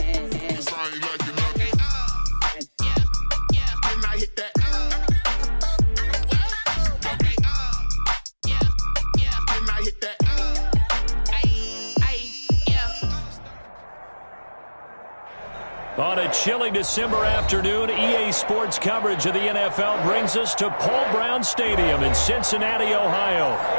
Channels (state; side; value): inverted; both; correlation -1.00